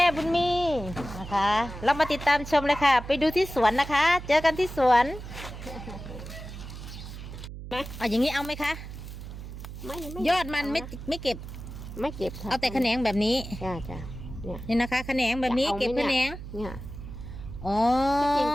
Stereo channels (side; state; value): right; noise; hum, 11 dB below the sound